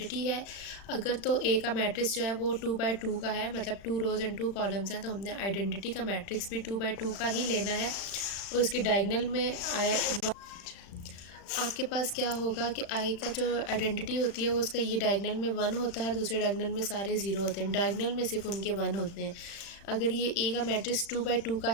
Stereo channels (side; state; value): right; late; 36 ms